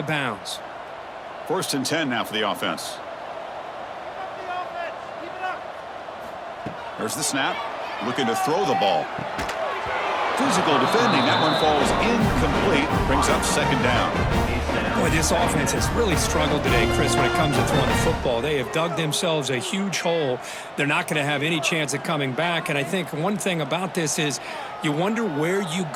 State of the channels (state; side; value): identical; both; correlation 1.00